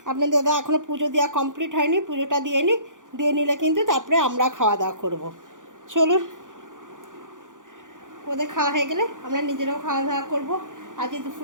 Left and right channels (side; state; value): left; late; 0.88 ms